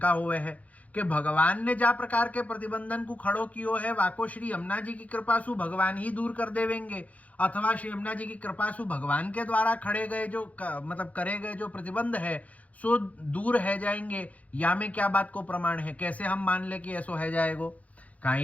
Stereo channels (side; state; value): right; late; 0.069 ms